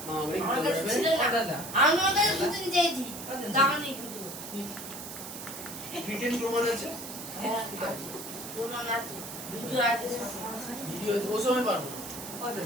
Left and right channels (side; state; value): right; noise; hiss, 10 dB below the sound